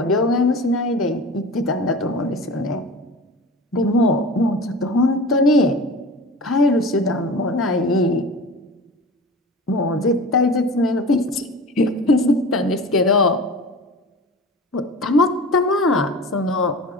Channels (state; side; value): normal; both; correlation 0.35